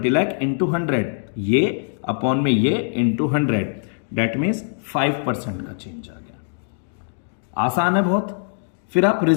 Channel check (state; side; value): silent; right; digital silence